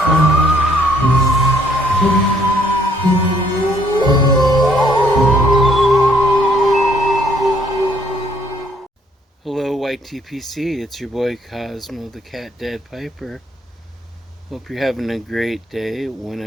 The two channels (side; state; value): both; normal; correlation 0.65